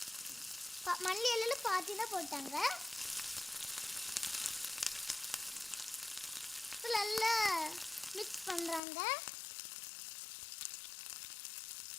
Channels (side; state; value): right; drops out; at 8.8 s